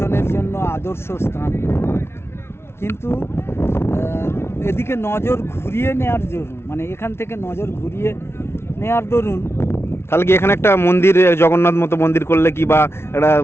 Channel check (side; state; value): right; late; 0.12 ms